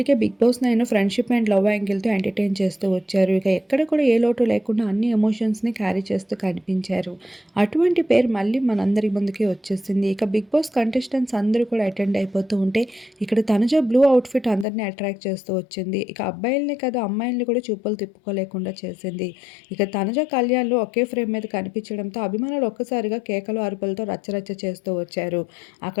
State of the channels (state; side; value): drops out; right; at 14.7 s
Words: Bigg Boss 9 friendship and love యాంగిల్తో ఎంటర్టైన్ చేస్తూ వచ్చారు. ఇక ఎక్కడ కూడా ఏ లోటు లేకుండా అన్ని ఎమోషన్స్ని క్యారీ చేస్తూ కనిపించారు. అటువంటి పేరు మళ్ళీ మనందరి ముందుకి వచ్చేసింది. ఇక బిగ్ బాస్ కంటెస్టెంట్స్ అందరూ కూడా అటెండ్ అయిపోతూ ఉంటే ఇక్కడ తనుజ బ్లూ అవుట్ఫిట్ అందరినీ అట్రాక్ట్ చేస్తూ వచ్చింది. ఇక అబ్బాయిల్ని కాదు అమ్మాయిల్ని కూడా చూపులు తిప్పుకోలేకుండా చేసింది. ఇక తనుజ కళ్యాణ్లు ఒకే ఫ్రేమ్ మీద కనిపించడంతో అభిమానులు ఒక్కసారిగా కేకలు అరుపులతో రచ్చరచ్చ చేస్తూ వచ్చారు.